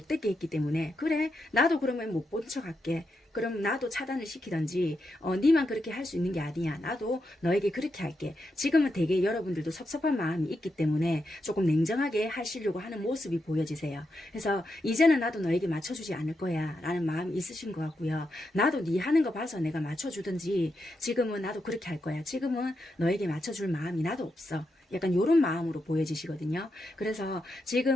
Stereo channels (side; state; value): both; normal; correlation 0.84